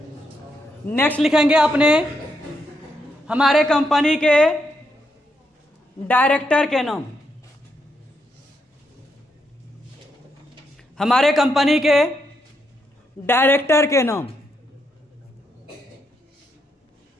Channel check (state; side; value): normal; both; correlation 0.80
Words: नेक्स्ट लिखेंगे अपने हमारे कंपनी के डायरेक्टर के नाम। हमारे कंपनी के डायरेक्टर के नाम।